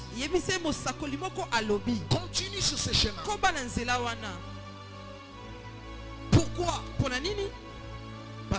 dit. yebisa ye mosakoli moko alobi Continue sur ce chemin. koba na nzela wana. Pourquoi? mpo na nini?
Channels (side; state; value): both; identical; correlation 1.00